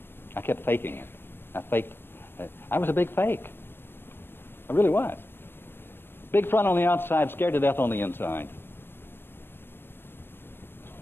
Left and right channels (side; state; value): right; late; 0.10 ms